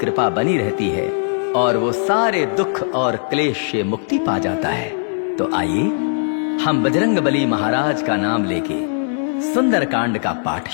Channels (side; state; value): right; silent; digital silence